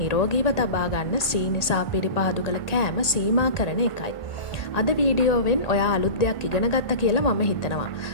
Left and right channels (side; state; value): right; late; 1.8 ms